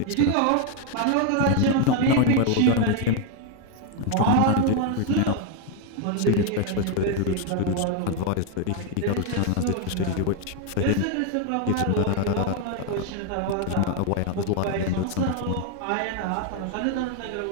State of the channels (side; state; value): both; different; correlation 0.01